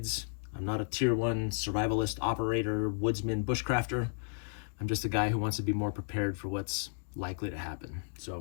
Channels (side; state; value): right; silent; 56 dB below the other